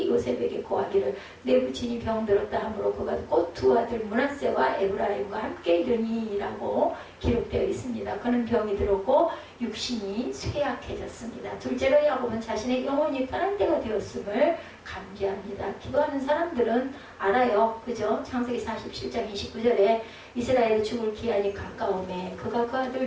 요셉에게 고하기를 내 부친이 병들었다 하므로 그가 곧 두 아들 므낫세와 에브라임과 함께 이르니라고 기록되어 있습니다. 그는 병이 들었고 육신이 쇠약해졌습니다. 둘째로 야곱은 자신의 영혼이 편한 때가 되었음을 감기합니다. 기도하는 사람들은 알아요. 그죠? 창세기 47장 29절에 이스라엘의 죽을 기한이 가까우매 그가 그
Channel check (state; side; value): identical; both; correlation 1.00